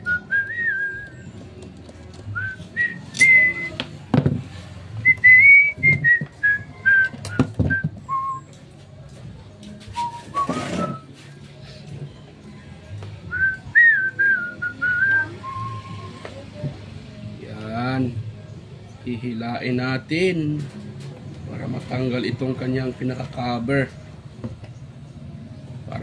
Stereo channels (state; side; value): identical; both; correlation 1.00